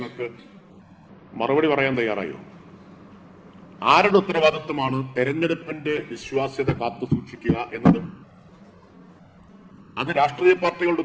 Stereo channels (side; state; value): both; identical; correlation 1.00